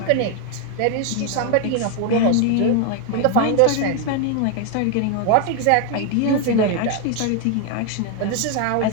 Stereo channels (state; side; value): different; both; correlation 0.01